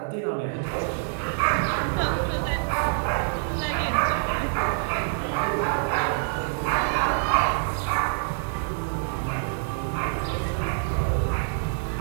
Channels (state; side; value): silent; left; 58 dB below the other